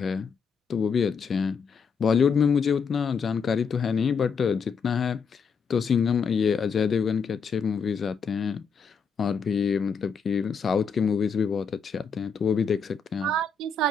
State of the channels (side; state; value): right; quieter; 5.4 dB